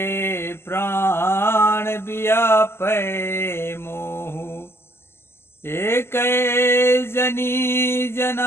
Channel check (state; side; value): late; right; 0.12 ms